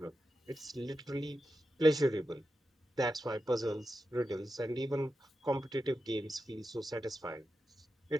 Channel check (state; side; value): normal; both; correlation 0.89